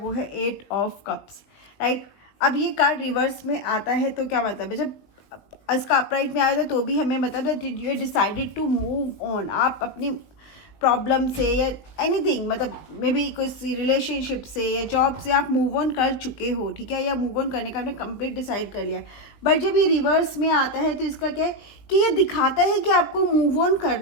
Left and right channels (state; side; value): late; right; 20 ms